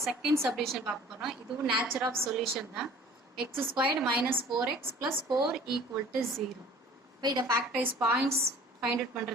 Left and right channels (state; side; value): normal; both; correlation 0.49